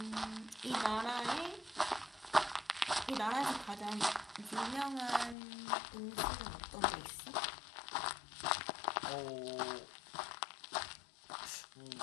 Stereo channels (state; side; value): drops out; right; at 5.4 s